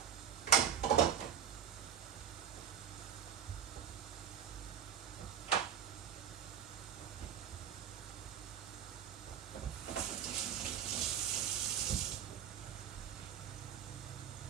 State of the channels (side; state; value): left; quieter; 9.1 dB